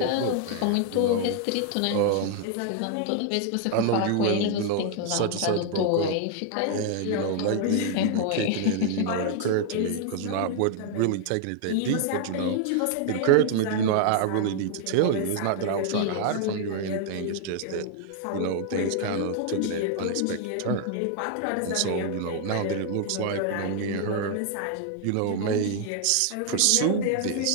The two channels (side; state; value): both; different; correlation 0.00